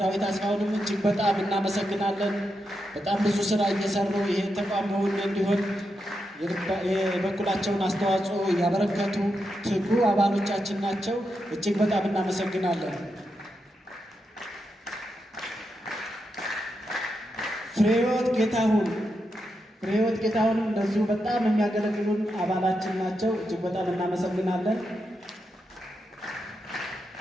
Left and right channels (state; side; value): normal; both; correlation 0.85